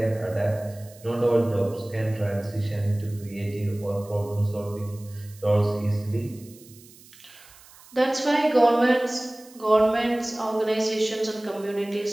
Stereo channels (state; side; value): noise; right; hiss, 23 dB below the sound